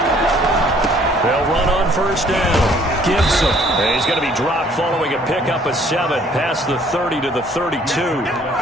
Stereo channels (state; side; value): normal; both; correlation 0.59